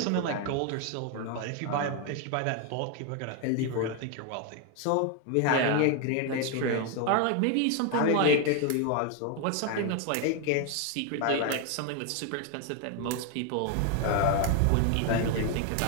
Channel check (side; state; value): both; different; correlation 0.01